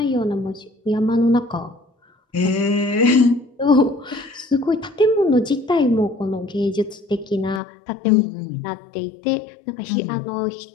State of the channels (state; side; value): drops out; right; at 7.6 s